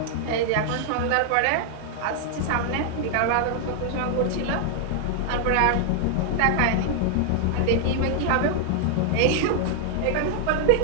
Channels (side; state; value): both; different; correlation -0.01